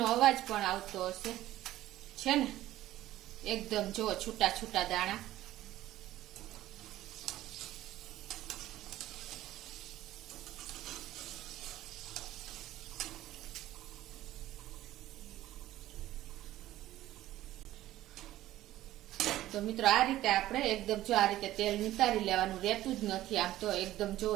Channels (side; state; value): left; quieter; 14.7 dB